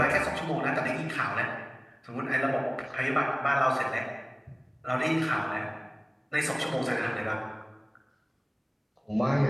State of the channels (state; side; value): identical; both; correlation 1.00